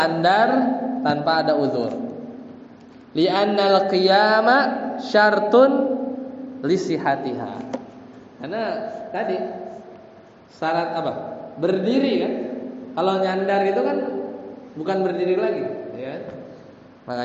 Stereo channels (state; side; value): identical; both; correlation 1.00